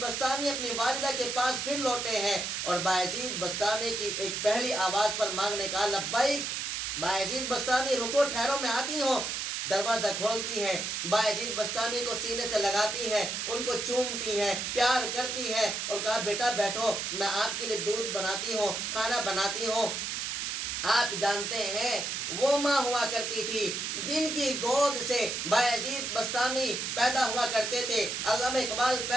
اپنی والدہ کے پاس پھر لوٹے ہیں، اور بایزید بسطامی کی ایک پہلی آواز پر مانگنے کا لبیک، بایزید بسطامی رکو، ٹھہرو، میں آتی ہوں۔ دروازہ کھولتی ہیں، بایزید بسطامی کو سینے سے لگاتی ہیں، ان کو چومتی ہیں، پیار کرتی ہیں اور کہا بیٹا بیٹھو، میں آپ کے لیے دودھ بناتی ہوں، کھانا بناتی ہوں۔ آپ جانتے ہیں وہ ماں ہوا کرتی تھی جن کی گود سے بایزید بسطامی پیدا ہوا کرتے تھے، علامہ اقبال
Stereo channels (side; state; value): right; noise; hiss, 2 dB below the sound